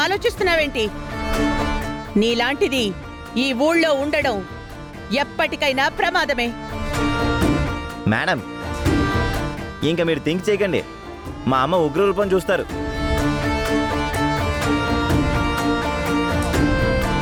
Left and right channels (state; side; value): identical; both; correlation 1.00